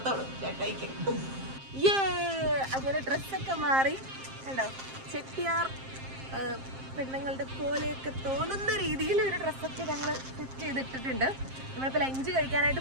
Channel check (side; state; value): left; late; 7.6 ms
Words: ചേട്ടായിക്ക്. അങ്ങനെ ഡ്രസ്സൊക്കെ മാറി കണ്ടോ, ചെട്ടിയാർ പെണ്ണുങ്ങളുടെ പോലെയൊക്കെ തോന്നുന്ന രീതിയിൽ ഒരു ഡ്രസ്സൊക്കെ ഞങ്ങൾ സെറ്റ് ചെയ്തിട്ടിട്ടുണ്ട്. നമ്മളിപ്പോൾ ലഞ്ച്